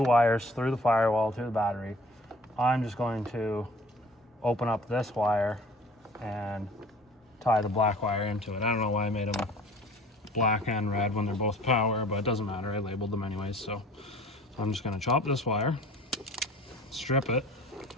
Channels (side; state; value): both; normal; correlation 0.49